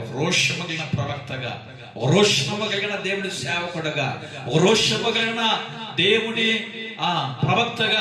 రోషము కలిగిన ప్రవక్తగా, రోషము కలిగిన దేవుని సేవకుడుగా, రోషము కలిగిన దేవుని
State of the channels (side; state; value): both; identical; correlation 1.00